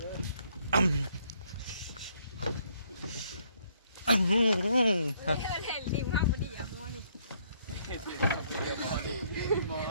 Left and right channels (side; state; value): both; inverted; correlation -0.68